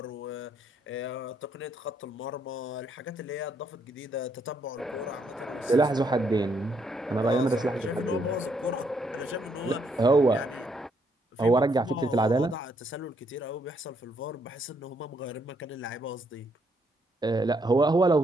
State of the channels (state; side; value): normal; both; correlation 0.73